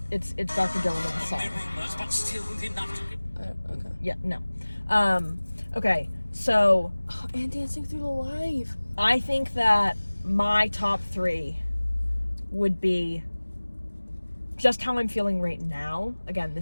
Dr. Dylan with the song. Okay. Yeah, no. Okay, so Oh, and Dancing Through the Life. I think that my top 3 would be just how I'm feeling right now. Again,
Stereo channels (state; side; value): inverted; both; correlation -1.00